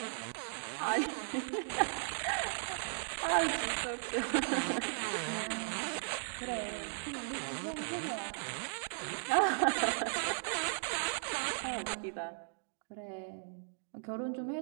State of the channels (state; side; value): silent; left; digital silence